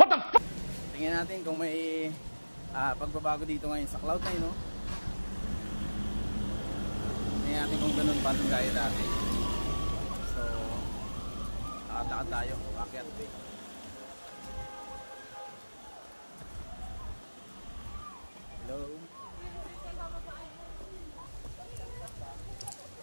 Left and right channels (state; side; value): inverted; both; correlation -1.00